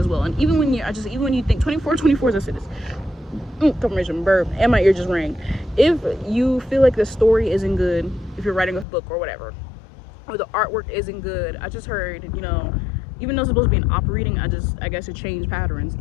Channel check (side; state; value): right; drops out; at 8.8 s